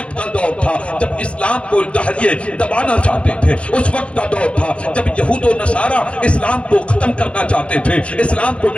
کا دور تھا جب اسلام کو دہریے دبانا چاہتے تھے، اس وقت کا دور تھا جب یہود و نصارہ اسلام کو ختم کرنا چاہتے تھے، اسلام کو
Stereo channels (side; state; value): right; late; 0.060 ms